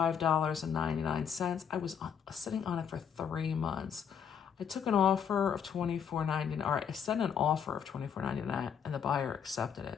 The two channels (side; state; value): right; quieter; 7.7 dB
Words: I was sitting on it for 3 months. I took an offer of $24.99, or I sent an offer of $24.99, and the buyer accepted